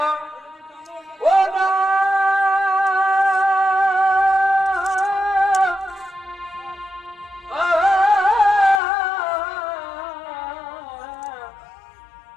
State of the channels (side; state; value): right; drops out; at 8.8 s